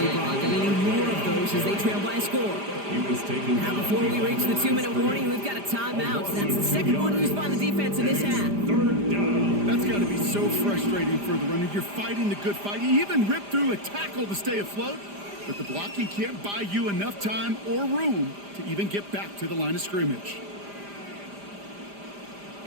Brock. And they need more of those as they trail by a score. Now before we reach the 2-minute warning, we've got a timeout. That's the second one used by the defense in this half. That's got to be so frustrating for the runner. You're fighting the good fight. You even rip through a tackle to stay afloat. But the blocking can't buy you enough time or room to even get back to the line of scrimmage.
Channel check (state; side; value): late; left; 5.0 ms